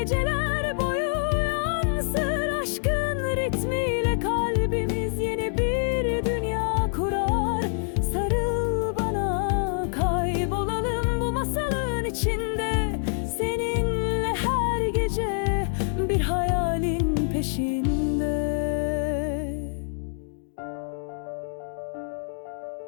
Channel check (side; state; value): right; silent; digital silence